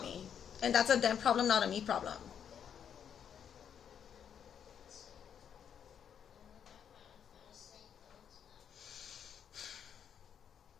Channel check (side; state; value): right; quieter; 8.3 dB